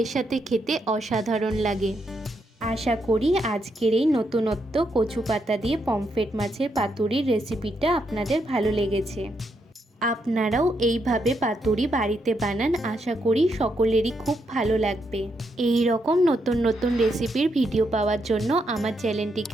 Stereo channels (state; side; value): normal; both; correlation 0.79